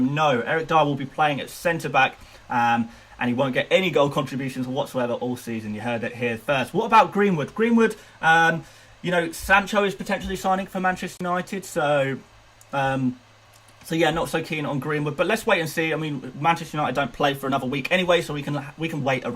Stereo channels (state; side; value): identical; both; correlation 1.00